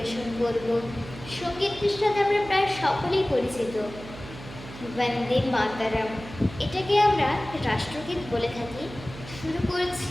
করব। সঙ্গীতটির সাথে আমরা প্রায় সকলেই পরিচিত, বন্দে মাতরম। এটাকে আমরা রাষ্ট্রগীত বলে থাকি। শুরু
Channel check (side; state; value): right; noise; hum, 14 dB below the sound